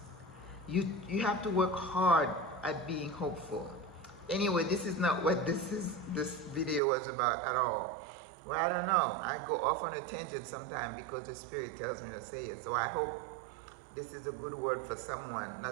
You have to work hard at being hopeful. Anyway, this is not what this video was about at all. Well, I don't know. I go off on a tangent sometimes because the Spirit tells me to say it. So I hope this is a good word for someone,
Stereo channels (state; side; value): drops out; left; at 6.8 s